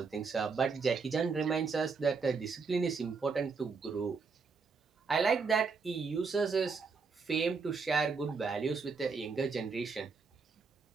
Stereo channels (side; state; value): left; quieter; 4.9 dB